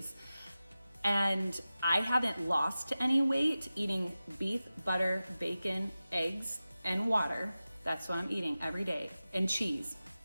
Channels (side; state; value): both; inverted; correlation -0.95